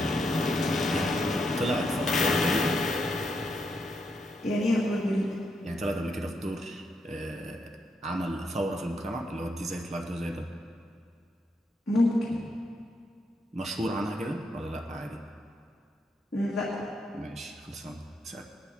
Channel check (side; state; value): both; normal; correlation 0.80